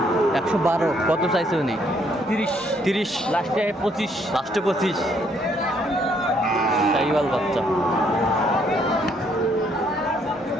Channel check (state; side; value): normal; both; correlation 0.68